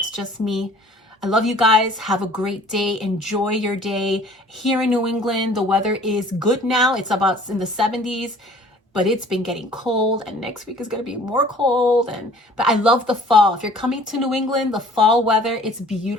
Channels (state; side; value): normal; both; correlation 0.52